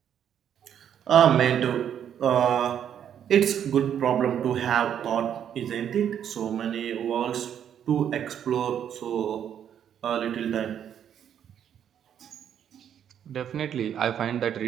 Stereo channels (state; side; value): quieter; left; 9.2 dB